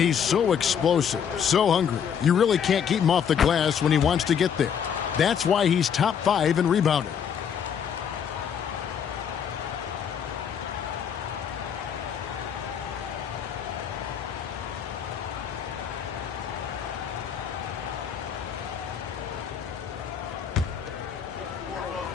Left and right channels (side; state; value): right; quieter; 7.8 dB